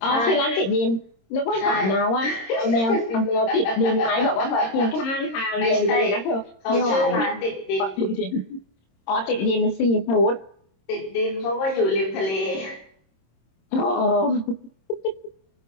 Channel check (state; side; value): late; right; 26 ms